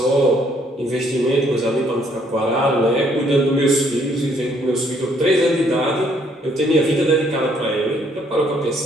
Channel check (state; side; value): normal; both; correlation 0.66